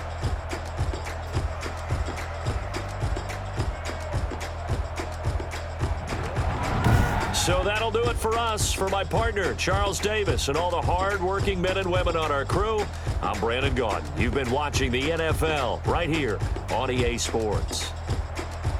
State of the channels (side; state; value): both; identical; correlation 1.00